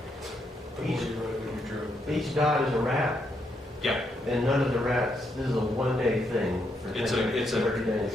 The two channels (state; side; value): normal; both; correlation 0.78